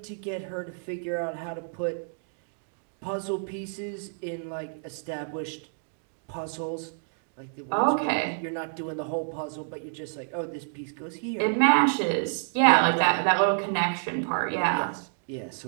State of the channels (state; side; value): silent; left; digital silence